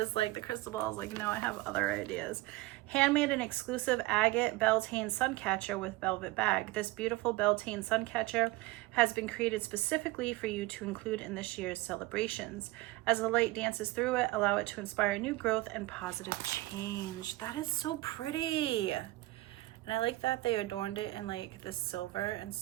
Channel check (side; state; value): left; quieter; 19.6 dB